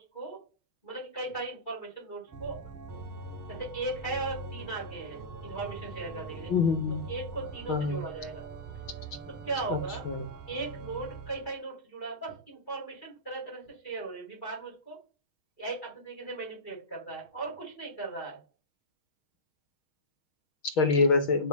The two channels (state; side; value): late; right; 6.4 ms